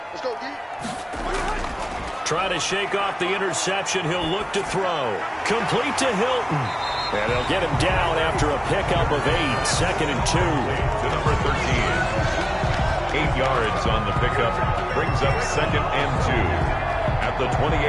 Let's go, D. Trying to shake off the interception. He'll look to throw. Complete to Hilton. And they'll get him down after a pickup of 8. 2nd and 2. to number 13. 8 yards on the pickup. Brings up 2nd and 2 at the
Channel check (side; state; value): both; identical; correlation 1.00